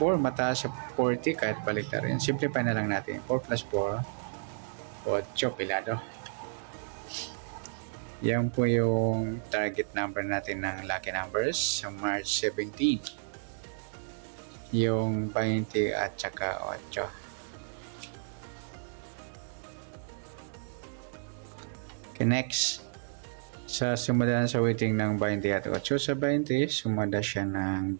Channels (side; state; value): left; silent; digital silence